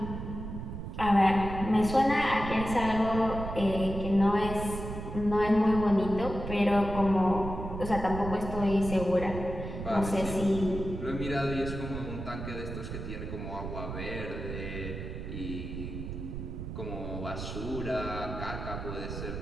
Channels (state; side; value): noise; right; rumble, 7 dB below the sound